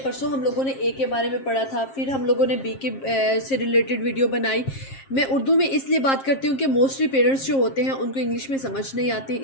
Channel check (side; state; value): right; late; 7.5 ms